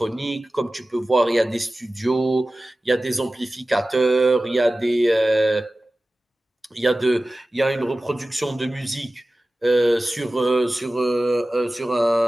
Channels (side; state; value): both; normal; correlation 0.96